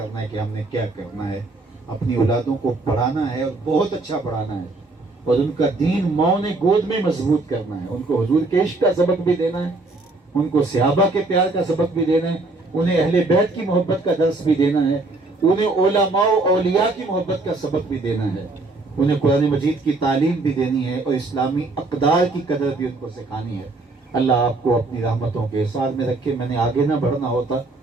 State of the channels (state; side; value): quieter; left; 3.2 dB